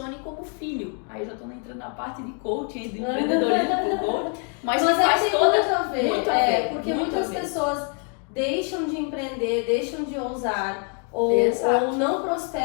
como filho. Aí eu já estou entrando na parte de coaching, de empreendedorismo com coaching, mas faz toda muito a ver, muito a ver, porque muito muitas a ver. pessoas deixam de empreender, deixam de ousar ou não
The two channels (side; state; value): right; quieter; 39.3 dB